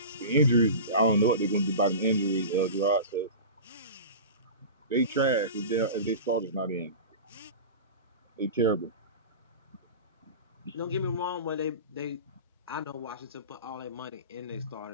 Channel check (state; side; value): inverted; both; correlation -0.31